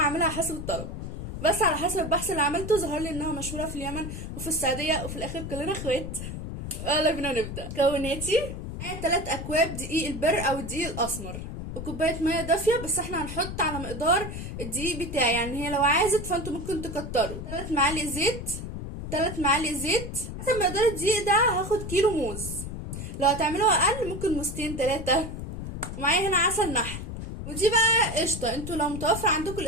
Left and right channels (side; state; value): left; noise; rumble, 7 dB below the sound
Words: حسب الطلب، بس على حسب البحث اللي عملته ظهر لي انها مشهورة في اليمن وفي السعودية، وفي الاخر كلنا اخوات. يلا بينا نبدأ. مكوناتي: معايا 3 اكواب دقيق البر او الدقيق الاسمر، وكوبايه ميه دافيه، بس احنا هنحط على مقدار الدقيق بتاعي، يعني هي لو عازت فانتوا ممكن تكتروا. 3 معالق زيت، 3 معالق زيت. حسب مقدار الدقيق ده هاخد كيلو موز، لو هتعملوها اقل ممكن موزتين 3. ومعايا هنا عسل نحل، ودي بقى قشطه. انتوا لو متوفر عندكم